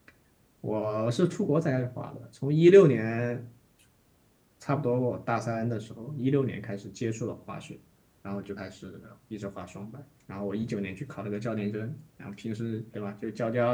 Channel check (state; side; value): identical; both; correlation 1.00